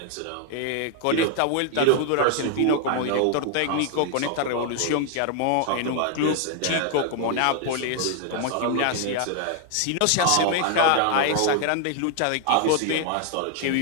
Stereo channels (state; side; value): different; both; correlation 0.00